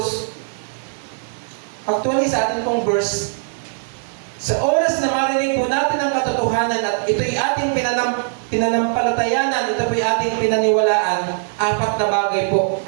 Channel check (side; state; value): left; silent; digital silence